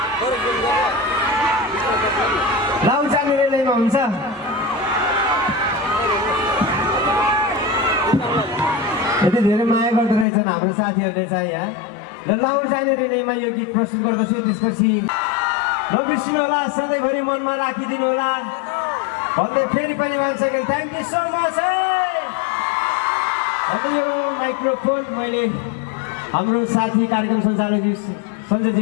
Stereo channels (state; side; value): drops out; right; at 10.2 s